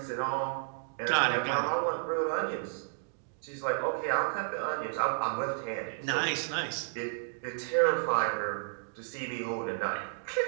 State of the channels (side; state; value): left; silent; digital silence